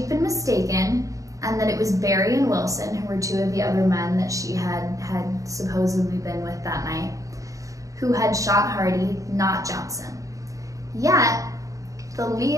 been mistaken and that it was Barry and Wilson, who were 2 of the other men that she had supposedly been with that night, who had shot Hardy, not Johnson. Yet, the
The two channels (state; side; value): late; left; 0.16 ms